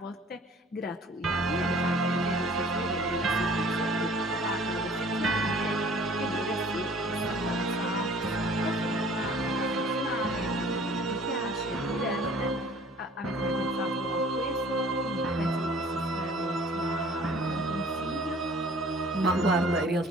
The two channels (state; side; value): normal; both; correlation 0.51